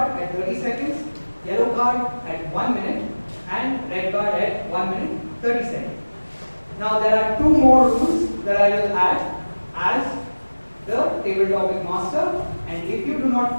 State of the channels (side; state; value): both; inverted; correlation -1.00